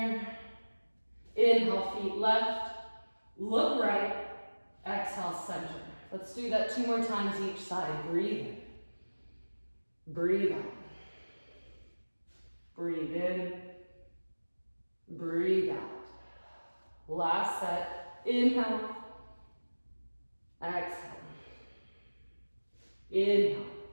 Inhale, feet left, look right. Exhale, center. Let's do that 2 more times each side. Breathe in. Breathe out. Breathe in. Breathe out. Last set. Inhale. Exhale. Inhale.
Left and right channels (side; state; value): both; inverted; correlation -1.00